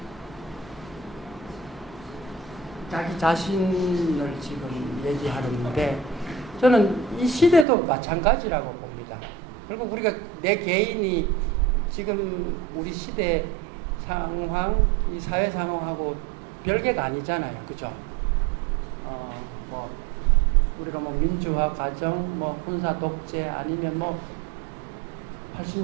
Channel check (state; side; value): drops out; left; at 7.7 s